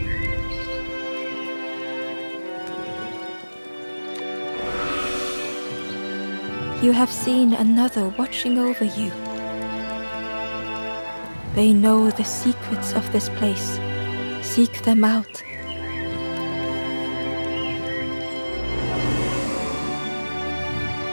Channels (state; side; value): inverted; both; correlation -1.00